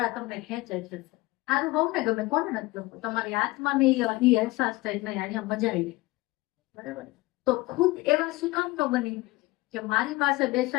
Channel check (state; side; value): quieter; right; 20.9 dB